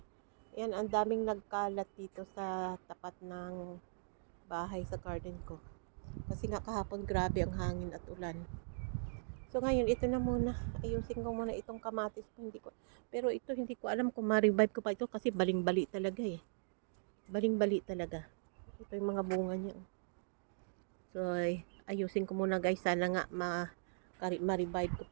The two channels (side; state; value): left; silent; digital silence